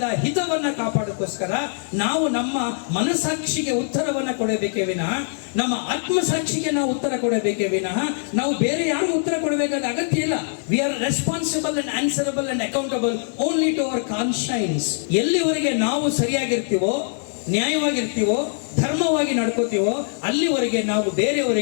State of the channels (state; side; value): silent; right; digital silence